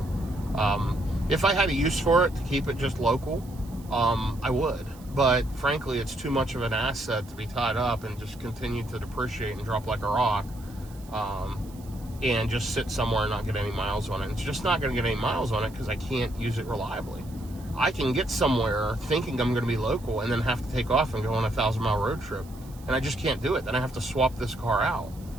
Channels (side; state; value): right; noise; hiss, 24 dB below the sound